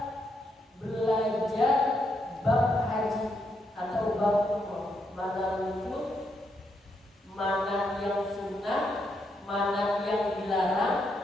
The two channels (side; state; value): both; normal; correlation 0.79